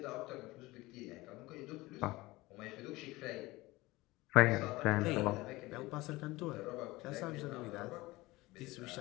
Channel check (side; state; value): right; quieter; 20.3 dB